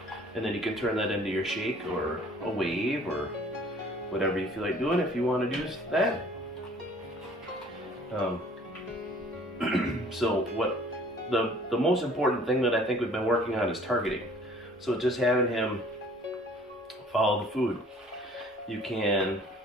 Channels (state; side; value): normal; both; correlation 0.53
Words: and then you can turn that into your shake or a wave or whatever you feel like doing if you want to do that. So what the most important thing that I think we've been working on is targeting. So just having him follow the food. You can